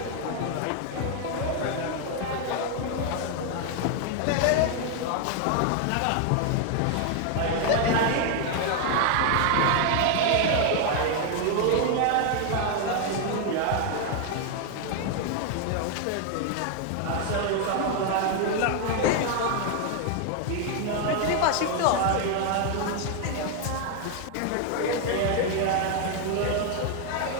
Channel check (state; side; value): different; both; correlation 0.00